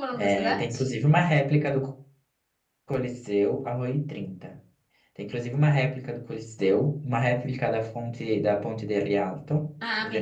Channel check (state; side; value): identical; both; correlation 1.00